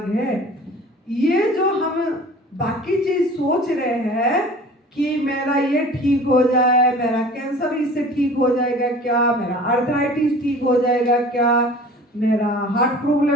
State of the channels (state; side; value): normal; both; correlation 0.44